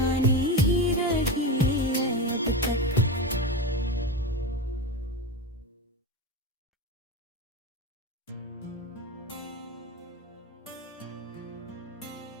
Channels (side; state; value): both; normal; correlation 0.20